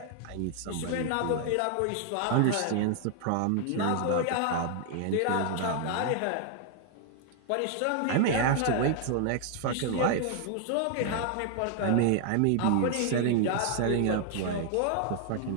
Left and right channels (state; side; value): different; both; correlation 0.00